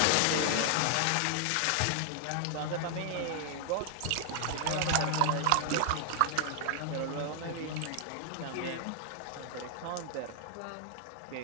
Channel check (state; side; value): different; both; correlation 0.00